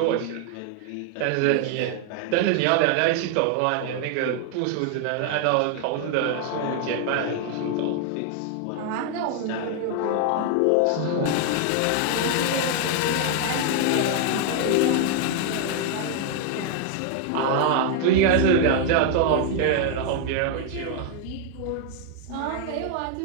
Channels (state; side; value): different; both; correlation 0.00